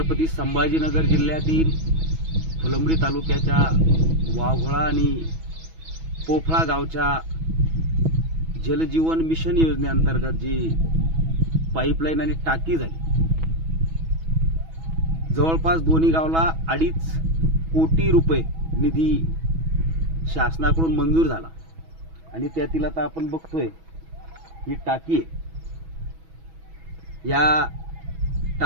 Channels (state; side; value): late; left; 6.2 ms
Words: संभाजीनगर जिल्ह्यातील फुलंब्री तालुक्याच्या वाघोळा आणि पोफळा गावच्या जलजीवन मिशन योजनेअंतर्गत जी पाईपलाईन आणि टाकी झाली, जवळपास दोन्ही गावला 2.5 कोटी रुपये निधी शासनाकडून मंजूर झाला आणि त्यातील आता आपण बघतोय ही टाकी आहे। या